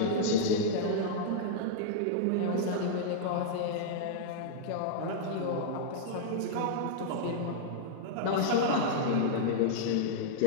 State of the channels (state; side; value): different; both; correlation -0.02